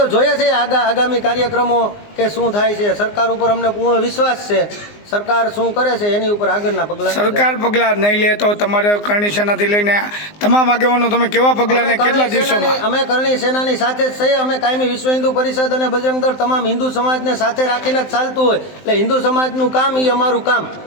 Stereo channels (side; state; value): right; late; 19 ms